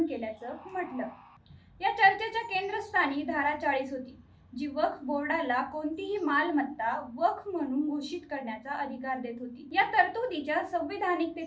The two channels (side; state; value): both; identical; correlation 1.00